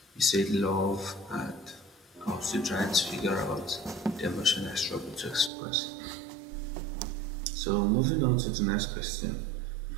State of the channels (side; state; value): left; drops out; at 5.5 s